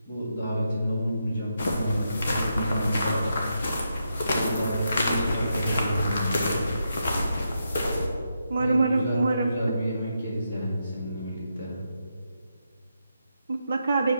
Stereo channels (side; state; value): both; inverted; correlation -0.83